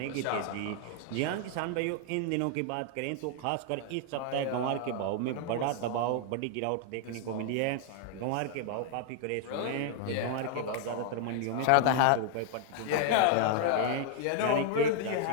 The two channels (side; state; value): both; different; correlation 0.00